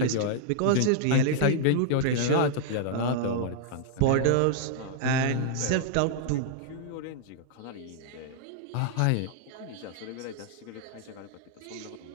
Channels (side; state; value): both; different; correlation -0.01